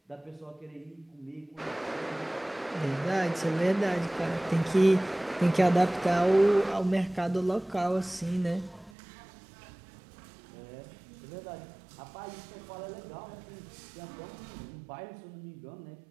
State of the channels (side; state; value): left; drops out; at 8.9 s